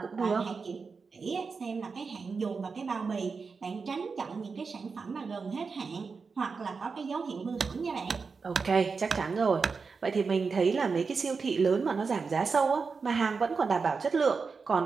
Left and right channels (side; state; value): left; quieter; 4.9 dB